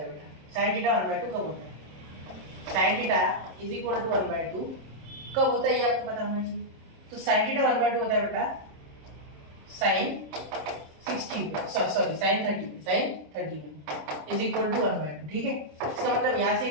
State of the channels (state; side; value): late; left; 27 ms